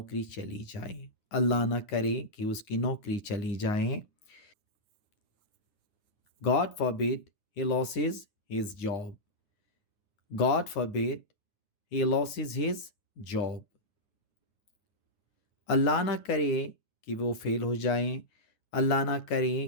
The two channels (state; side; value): late; right; 9.7 ms